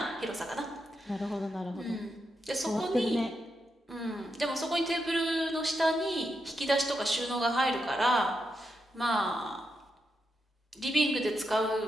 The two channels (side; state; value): both; normal; correlation 0.85